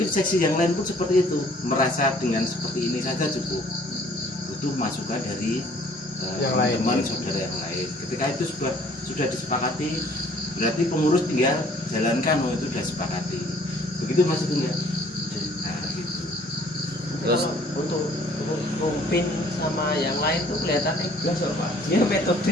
seksi yang lain pun seperti itu, merasa dengan seperti ini saja cukup. Butuh masukan dari Yang lain. teman saudara yang lain. Ketika itu sudah disepakati, berarti pengurus tinggal jalankan. Oh itu sudah sepakati. Begitu Mas itu enggak? Nah gitu. Terus Untuk rumpin sama yang lain tuh kelihatannya jelas kok Pak. Dia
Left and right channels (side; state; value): both; normal; correlation 0.57